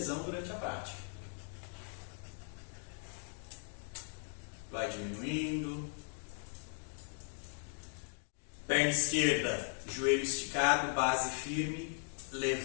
durante a prática. Vai diminuindo. Perna esquerda, joelho esticado, base firme.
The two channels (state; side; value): silent; right; 52 dB below the other